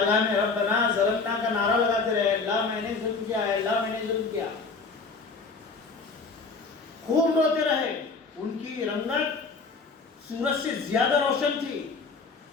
میں ربنا ظلمنا کا نعرہ لگاتے رہے، اللہ میں نے ظلم کیا ہے، اللہ میں نے ظلم کیا، خوب روتے رہے۔ ان کی رنگت سورج سے زیادہ روشن تھی،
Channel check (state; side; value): quieter; right; 4.4 dB